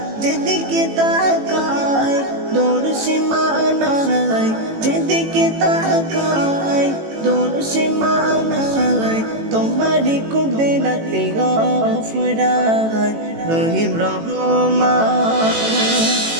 যেদিকে তাকাই দূর সীমানায়, যেদিকে তাকাই দূর সীমানায়। তোমারি কুদরতে গফরান, রহিম রহমান।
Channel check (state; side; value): late; left; 18 ms